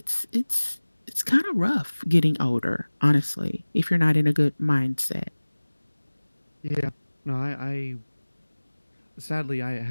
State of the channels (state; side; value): inverted; both; correlation -1.00